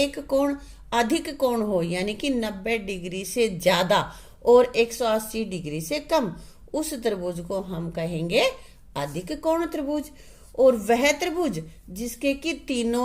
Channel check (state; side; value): identical; both; correlation 1.00